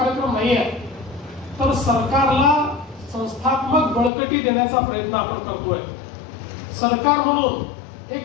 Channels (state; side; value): drops out; right; at 4.1 s